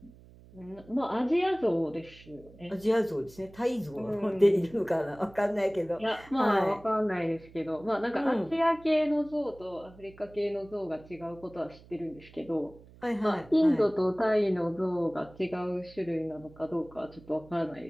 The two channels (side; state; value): right; noise; hum, 22 dB below the sound